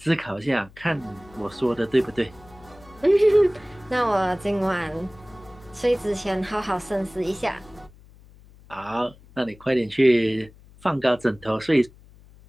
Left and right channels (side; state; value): left; noise; hum, 24 dB below the sound